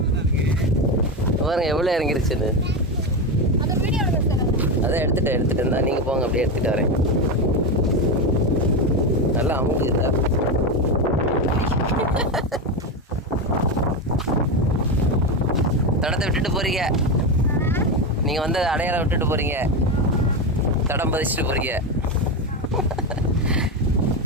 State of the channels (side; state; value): both; normal; correlation 0.14